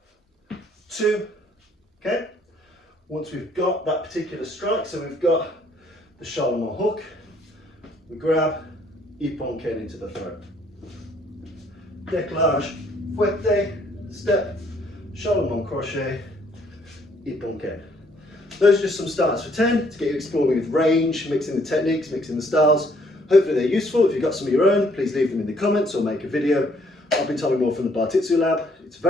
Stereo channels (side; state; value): both; normal; correlation 0.65